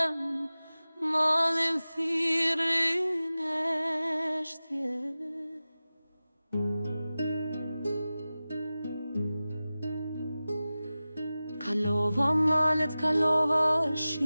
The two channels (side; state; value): both; inverted; correlation -0.96